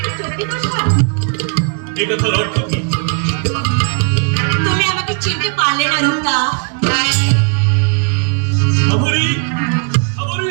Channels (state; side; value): quieter; left; 38.8 dB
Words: কি চলতে কষ্ট? এই কথার অর্থ কি? তুমি আমাকে চিনতে পারলে না রুতা। সাবরী, সাবরী